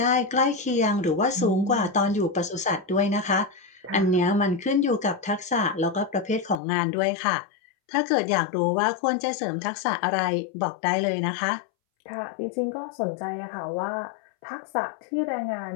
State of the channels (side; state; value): right; drops out; at 6.6 s